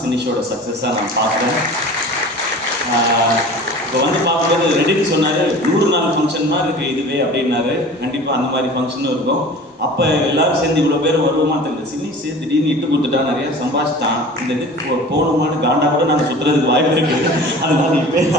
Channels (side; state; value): both; normal; correlation 0.41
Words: சினிஷோட சக்ஸஸாக நான் பார்க்குறேன். இப்போ வந்து பார்க்கும்போது ரெடின்னு சொன்னார் 100 நாள் ஃபங்க்ஷன் மாதிரி இருக்குது இதுவே அப்படின்னாரு. கண்டிப்பாக அந்த மாதிரி ஃபங்க்ஷனும் இருக்கும். அப்போ எல்லாரும் சேர்ந்து இவ்வளோ பேர் வருவோமா தெரியல. சினிஷ் திடீர்னு இட்டு கொடுத்துட்டா நிறையா சம்பாதிச்சிட்டான், இந்த இதுக்கு போகணுமான்னு காண்டா கூட நாங்கள் சுற்றுறதுக்கு வாய்ப்பு இருக்குது. அதனால இப்போ